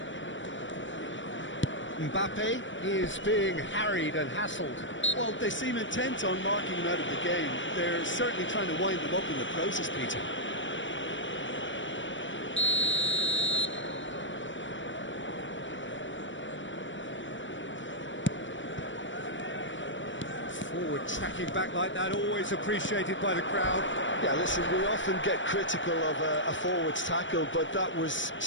Mbappe is being harried and hassled. Well, they seem intent on marking him out of the game. They're certainly trying to wind him up in the process, Peter. Forward tracking back like that, always appreciated by the crowd. Yeah, listen, we often get critical of a forward's tackle, but that was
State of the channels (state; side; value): late; right; 0.55 ms